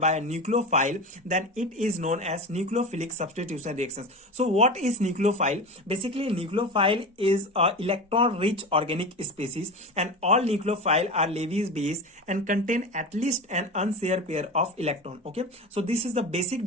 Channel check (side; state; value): both; normal; correlation 0.26